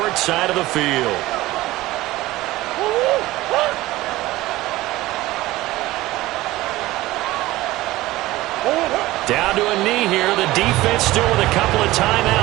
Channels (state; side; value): quieter; left; 17.7 dB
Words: side of the field. Down to a knee here. The defense still with a couple of